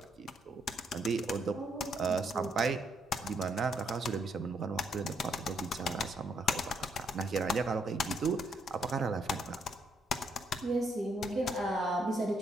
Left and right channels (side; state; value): both; normal; correlation 0.74